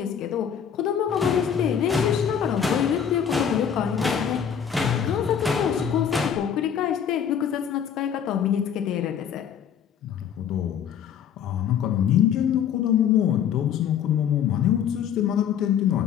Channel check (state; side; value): quieter; right; 8.4 dB